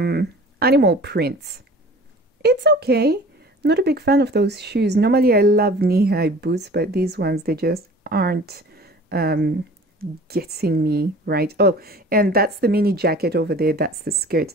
animal prints. It's okay. Not a big fan of those shoes. Normally I love knee-high boots, but these ones, they just aren't getting me right. Oh, and that's the mini jacket over there. That's the skirt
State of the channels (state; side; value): normal; both; correlation 0.44